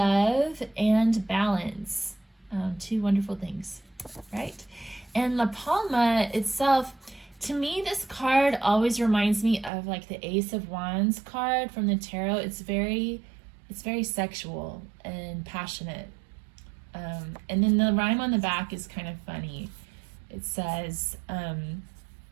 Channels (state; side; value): drops out; left; at 9.7 s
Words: and balance. Two wonderful things, right? And La Palma itself, to me, this card always reminds me of like the Ace of Wands card from the tarot. It's very sexual and passionate. And then the rhyme on the back is kind of funny. It says,